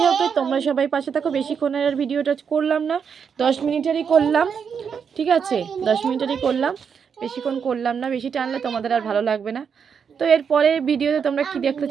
হোক, তোমরা সবাই পাশে থাকো। বেশিক্ষণের আর ভিডিওটা করলাম না, 10 মিনিটেরই করলাম, ঠিক আছে? 10 মিনিটেরই করলাম, বেশিক্ষণ করলাম না, বেশি টানলে তোমাদের আর ভালো লাগবে না। তো এরপরে ভিডিওতে তোমরা কি দেখতে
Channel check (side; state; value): left; quieter; 6.8 dB